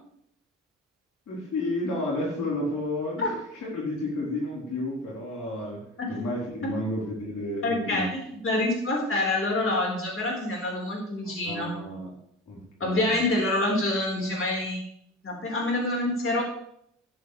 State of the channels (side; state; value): both; normal; correlation 0.30